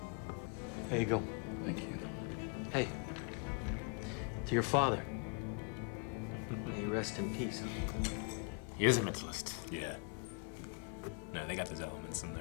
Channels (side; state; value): right; quieter; 36.2 dB